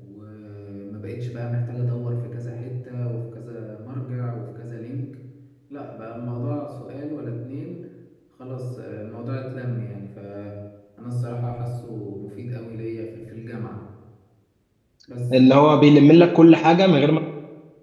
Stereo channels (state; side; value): identical; both; correlation 1.00